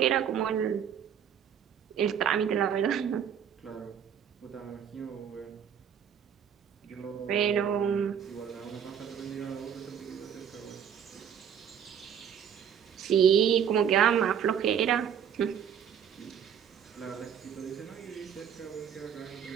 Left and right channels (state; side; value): quieter; left; 8.5 dB